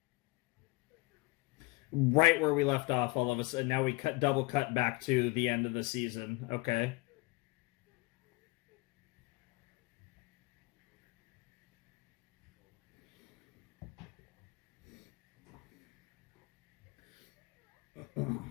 Right where we left off, all of a sudden. Now we double cut back to the end of the season. Okay.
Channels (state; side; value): quieter; right; 23.9 dB